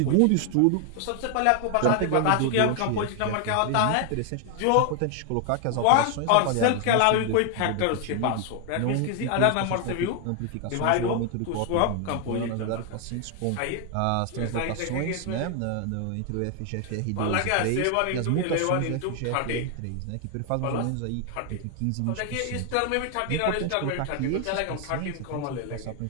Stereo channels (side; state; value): both; different; correlation 0.00